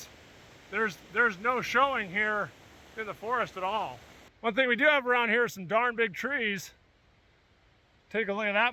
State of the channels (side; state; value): both; identical; correlation 1.00